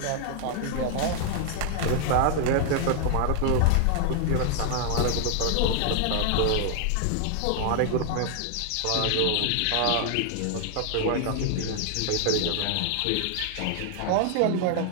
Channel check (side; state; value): both; different; correlation 0.00